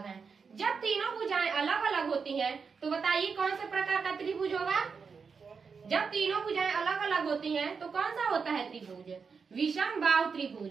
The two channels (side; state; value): left; quieter; 5.5 dB